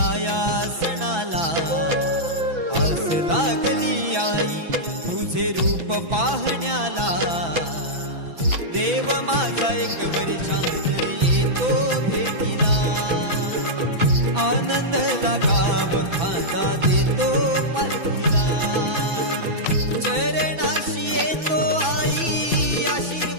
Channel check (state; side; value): late; left; 6.0 ms